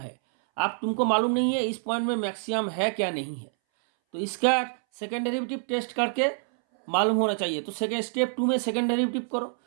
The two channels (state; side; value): silent; left; 60 dB below the other